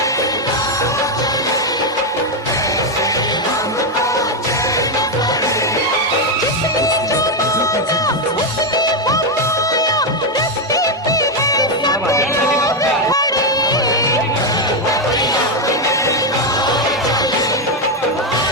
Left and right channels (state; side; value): normal; both; correlation 0.05